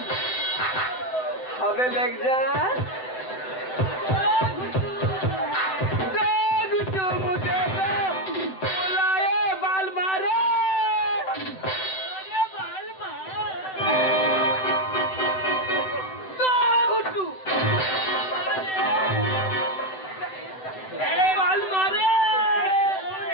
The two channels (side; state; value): right; late; 7.9 ms